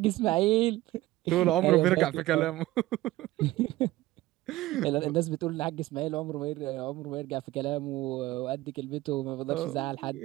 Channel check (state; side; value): quieter; left; 17.2 dB